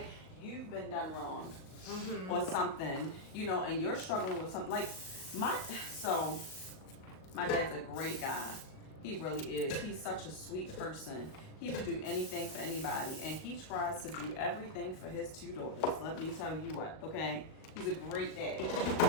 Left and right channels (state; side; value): late; right; 38 ms